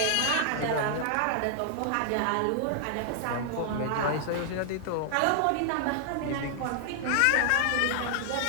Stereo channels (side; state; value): both; different; correlation 0.00